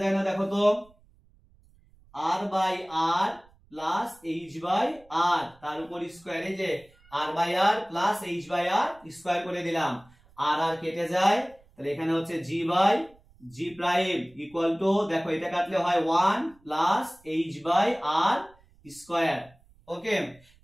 যায় না, দেখো তো r by r plus h by r তার উপর স্কয়ার, এই যে r by r plus h by r square করে দিলাম, r আর কেটে যায়, তাহলে এখানে হচ্ছে g by g prime equal to, দেখো এটা কাটলে হয় 1 plus h by r square. Okay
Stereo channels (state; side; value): noise; right; rumble, 29 dB below the sound